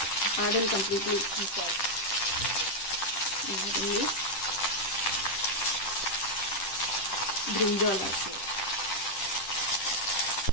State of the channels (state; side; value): late; right; 10 ms